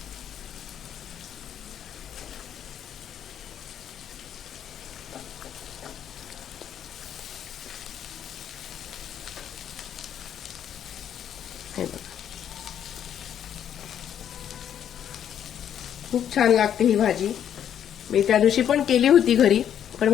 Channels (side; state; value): right; quieter; 9.6 dB